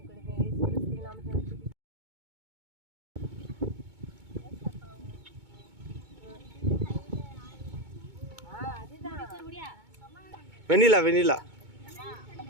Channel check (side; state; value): left; late; 2.2 ms